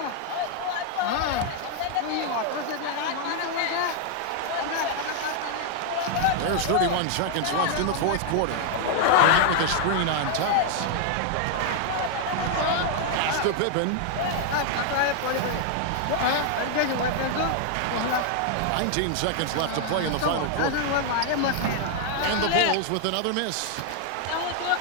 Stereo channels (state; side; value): different; both; correlation 0.00